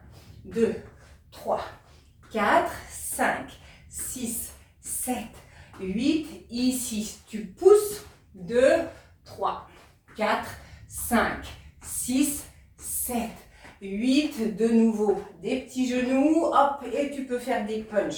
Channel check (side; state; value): both; identical; correlation 1.00